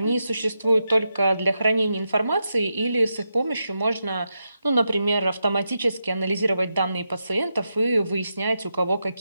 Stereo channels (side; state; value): both; inverted; correlation -0.86